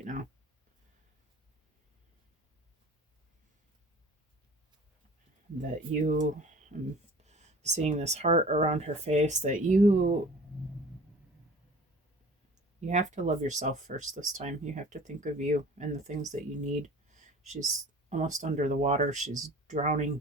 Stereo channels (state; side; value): normal; both; correlation 0.44